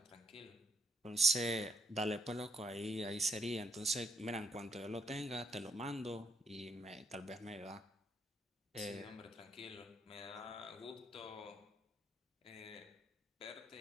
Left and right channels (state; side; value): normal; both; correlation 0.72